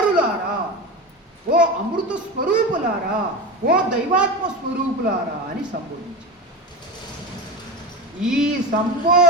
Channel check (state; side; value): normal; both; correlation 0.24